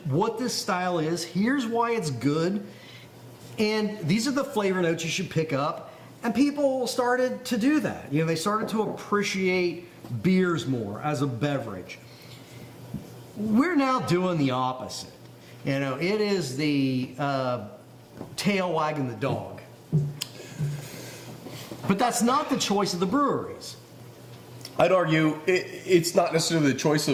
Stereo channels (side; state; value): both; identical; correlation 1.00